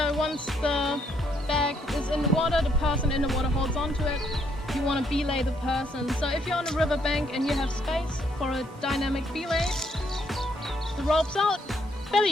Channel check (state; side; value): normal; both; correlation 0.72